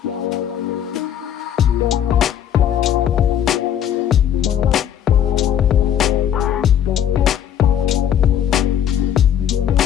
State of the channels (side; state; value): right; quieter; 9.8 dB